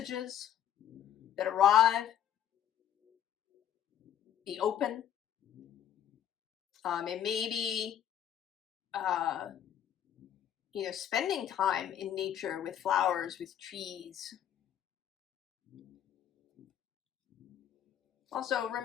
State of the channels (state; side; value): quieter; right; 10.2 dB